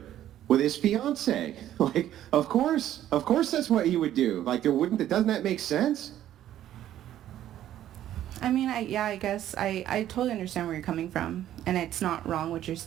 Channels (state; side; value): quieter; left; 12.1 dB